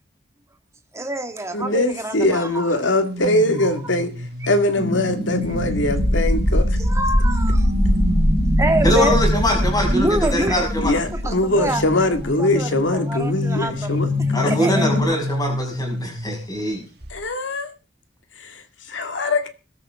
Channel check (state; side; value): normal; both; correlation 0.48